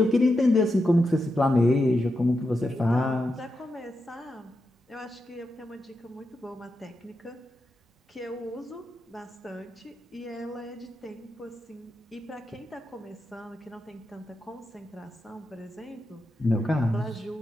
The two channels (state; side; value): normal; both; correlation 0.87